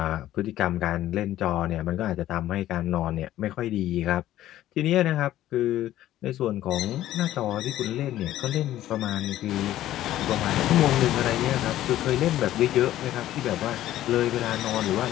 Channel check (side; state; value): right; quieter; 13.6 dB